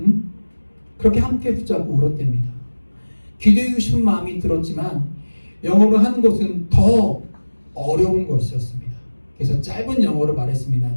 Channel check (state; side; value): inverted; both; correlation -1.00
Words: 그렇게 함께 붙잡고 울었답니다. 기도하고 싶은 마음이 들었지만 영어로 하는 것은 더 어려운 것이었습니다. 그래서 짧은 영어로 말했습니다.